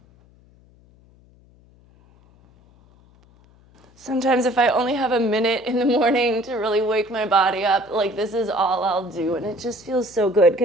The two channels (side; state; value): left; noise; hum, 29 dB below the sound